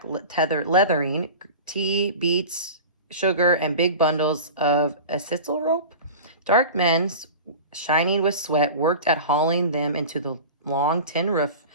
leathering, tea, beets, sugar, and big bundles of acetyl rope. Dark men, shining with sweat, worked at hauling them into the long tin roof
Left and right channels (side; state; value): both; inverted; correlation -0.33